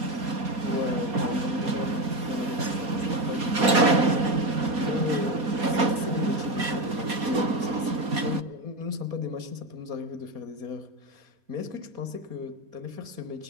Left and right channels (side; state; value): left; late; 4.2 ms